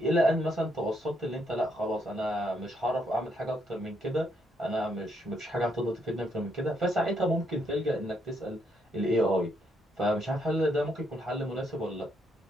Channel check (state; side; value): normal; both; correlation 0.74